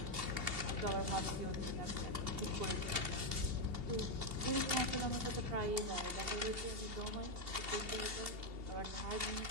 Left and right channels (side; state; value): left; late; 2.8 ms